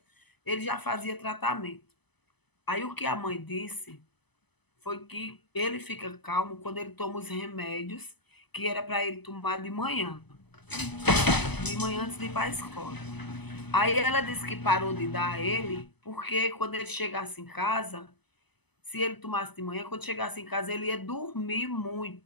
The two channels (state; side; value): late; right; 0.99 ms